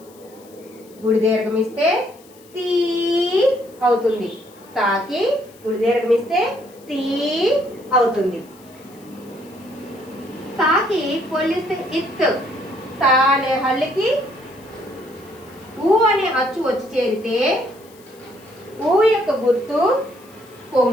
గుడి దీర్ఘం ఇస్తే తీ అవుతుంది. తాకి గుడి దీర్ఘం ఇస్తే తీ అవుతుంది. తాకి పొల్లిస్తే ఇత్. తా అనే హల్లుకి ఊ అనే అచ్చు వచ్చి చేరితే ఊ యొక్క గుర్తు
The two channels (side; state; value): left; noise; hiss, 26 dB below the sound